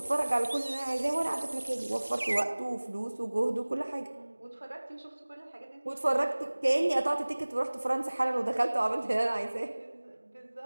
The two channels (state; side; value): inverted; both; correlation -1.00